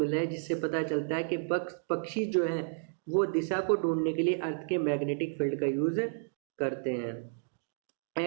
रहे हैं जिससे पता चलता है कि पक्षी जो है वो दिशा को ढूंढने के लिए अर्थ के मैग्नेटिक फील्ड का यूज करते हैं।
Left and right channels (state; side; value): silent; left; digital silence